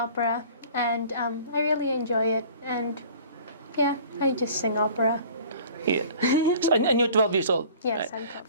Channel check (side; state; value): both; inverted; correlation -0.48